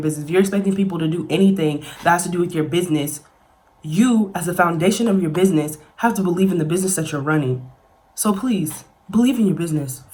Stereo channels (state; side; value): identical; both; correlation 1.00